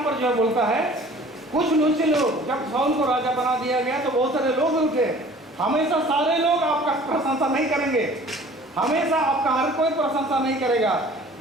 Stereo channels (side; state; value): both; normal; correlation 0.48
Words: पर जो बोलता है कुछ नीचे लोग, जब साउल को राजा बना दिया गया तो बहुत सारे लोग उठे। हमेशा सारे लोग आपका प्रशंसा नहीं करेंगे, हमेशा आपका हर कोई प्रशंसा नहीं करेगा।